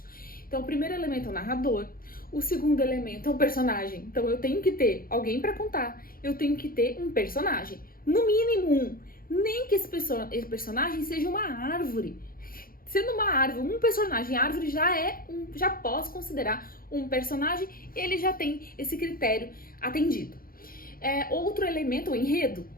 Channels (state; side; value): late; right; 0.42 ms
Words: Então, o primeiro elemento é o narrador, o segundo elemento é o personagem. Então, eu tenho que ter alguém para contar, eu tenho que ter um personagem, no mínimo um, nem que esse personagem seja uma árvore. Sendo uma árvore, um personagem, árvore já posso considerar um personagem, ele já tem esse critério atendido. Outro elemento, o enredo.